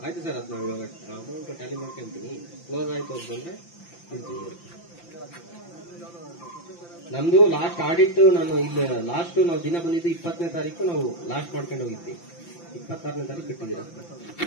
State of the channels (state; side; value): late; right; 5.9 ms